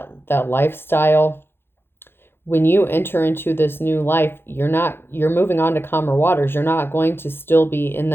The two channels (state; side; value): late; right; 0.11 ms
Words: lifestyle. When you enter into this new life, you're moving on to calmer waters. You're not going to still be in